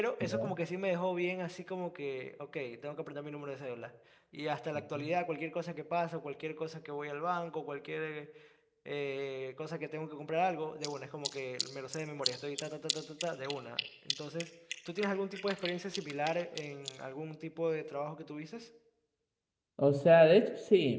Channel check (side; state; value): both; identical; correlation 1.00